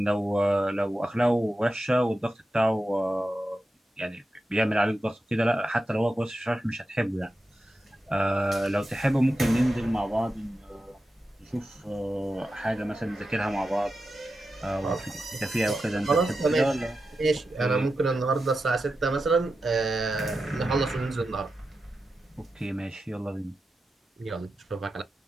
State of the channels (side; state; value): both; normal; correlation 0.90